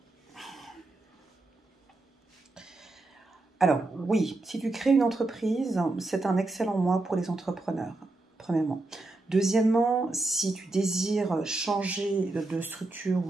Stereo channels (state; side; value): quieter; left; 3.0 dB